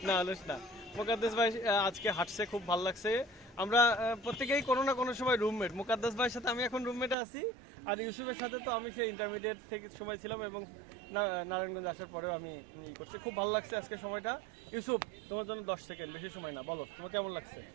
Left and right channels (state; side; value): drops out; left; at 7.2 s